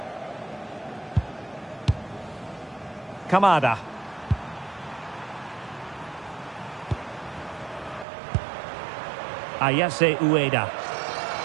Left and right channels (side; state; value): left; drops out; at 8.1 s